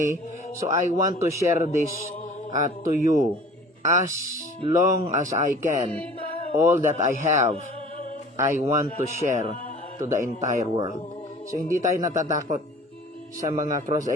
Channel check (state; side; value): normal; both; correlation 0.46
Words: So I want to share this to you as long as I can. All that I have, I want to share to the entire world. So hindi tayo natatakot sa mga